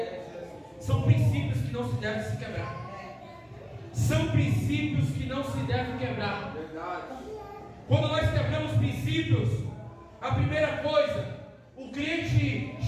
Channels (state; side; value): identical; both; correlation 1.00